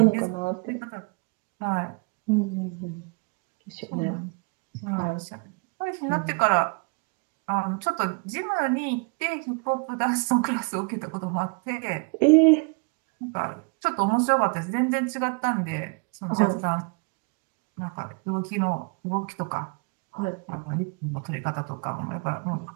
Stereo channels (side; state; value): left; quieter; 33.8 dB